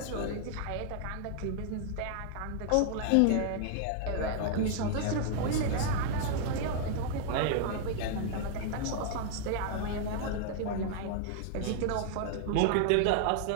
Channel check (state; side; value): different; both; correlation 0.00